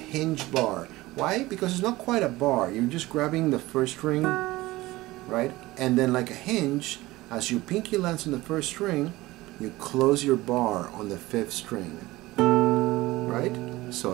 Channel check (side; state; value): left; quieter; 18.9 dB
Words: bar. Why? Because it's not quite a bar. You're just grabbing the 1st string, right? And then like a hinge, as your pinky lands on the 1st string, you close your bar on the 5th string, right? So